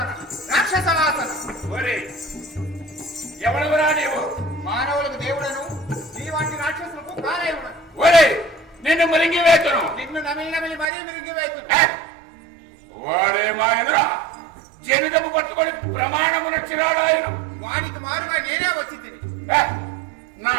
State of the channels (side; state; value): left; drops out; at 10.9 s